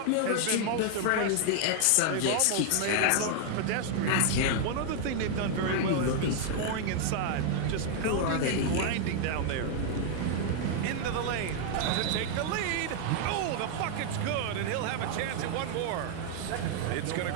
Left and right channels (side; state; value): both; different; correlation 0.00